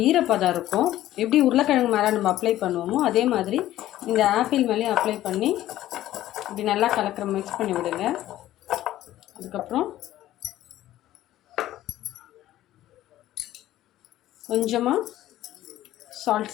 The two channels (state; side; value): quieter; right; 14.0 dB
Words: ஈரப்பதம் இருக்கும். எப்படி உருளைக்கிழங்கு மேலே நம்ம அப்ளை பண்ணுவோமோ அதே மாதிரி இந்த ஆப்பிள் மேலேயும் அப்ளை பண்ணி இப்படி நல்லா மிக்ஸ் பண்ணி விடுங்க. அதுக்கப்புறம் கொஞ்சமாக